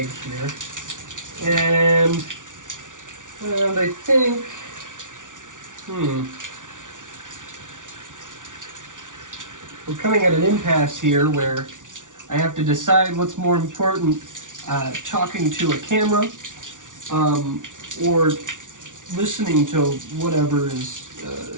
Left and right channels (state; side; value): late; left; 0.87 ms